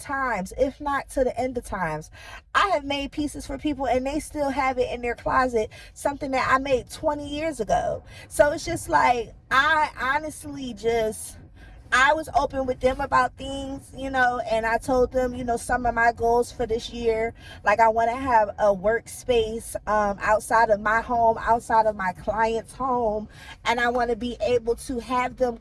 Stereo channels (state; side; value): identical; both; correlation 1.00